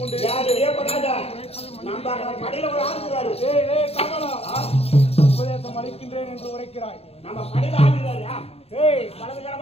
கொண்டு நம்ம கடையில ஒரு ஆளுகிறாரு. உபதேசம் அளிக்கின்றேன் என்று உரைக்கிறாய். நம்ம கடையில ஆளுகிறாரு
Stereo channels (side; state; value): right; late; 0.29 ms